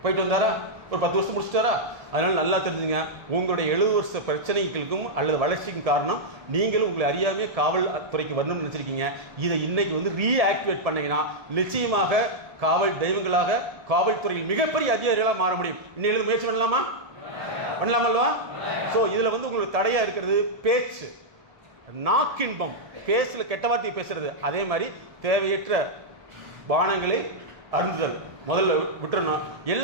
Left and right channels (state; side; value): late; left; 1.7 ms